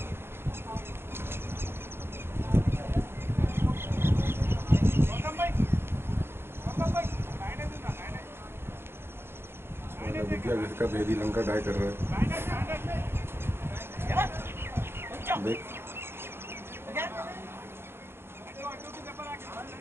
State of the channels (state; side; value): late; left; 0.11 ms